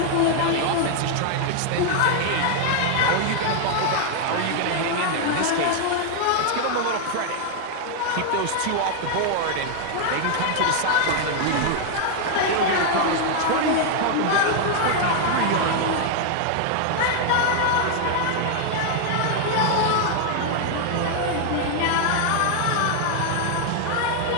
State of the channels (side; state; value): both; different; correlation 0.00